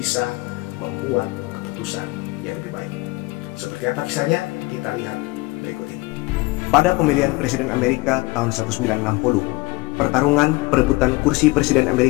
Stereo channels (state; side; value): quieter; right; 22.3 dB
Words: membuat keputusan yang lebih baik. Seperti apa kisahnya? Kita lihat berikut ini. Pada pemilihan Presiden Amerika tahun 1960, pertarungan perebutan kursi Presiden